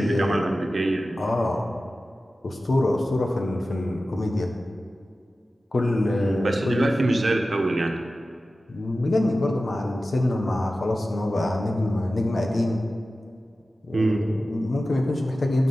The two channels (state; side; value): normal; both; correlation 0.95